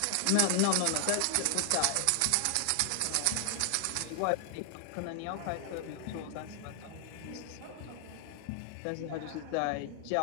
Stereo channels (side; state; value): both; different; correlation 0.00